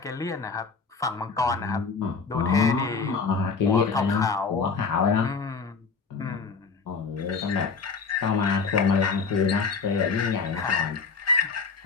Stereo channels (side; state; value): right; quieter; 4.9 dB